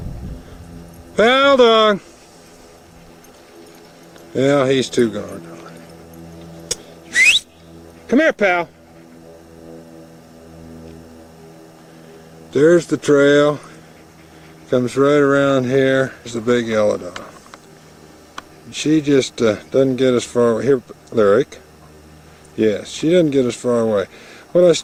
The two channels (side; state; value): both; identical; correlation 1.00